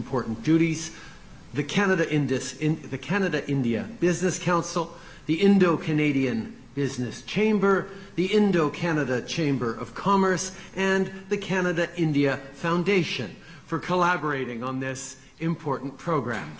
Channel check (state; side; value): identical; both; correlation 1.00